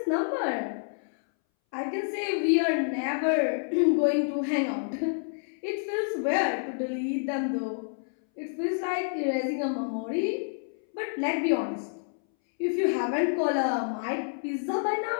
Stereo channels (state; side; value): silent; right; 59 dB below the other